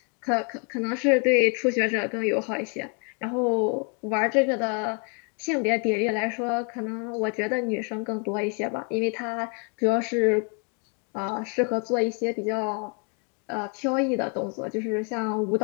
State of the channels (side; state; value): right; quieter; 36.4 dB